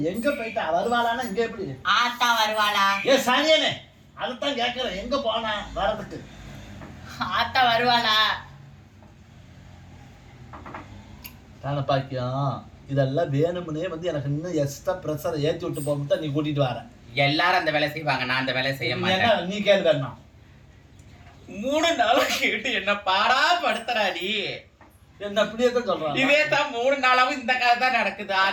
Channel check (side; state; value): both; identical; correlation 1.00